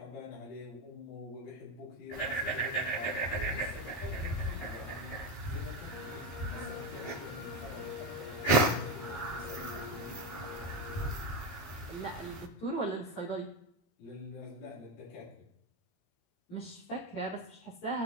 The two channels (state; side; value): late; right; 18 ms